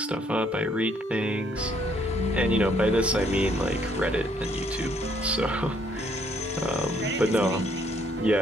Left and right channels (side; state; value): both; normal; correlation 0.67